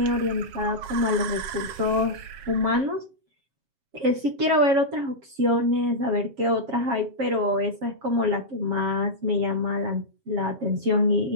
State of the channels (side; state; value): left; late; 7.3 ms